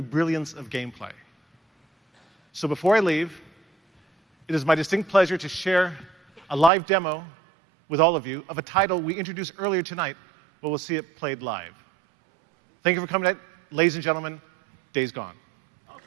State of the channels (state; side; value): drops out; left; at 6.7 s